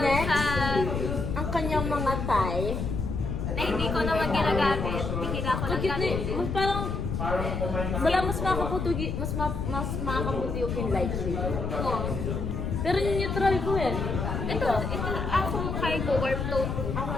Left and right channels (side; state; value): left; noise; rumble, 2 dB below the sound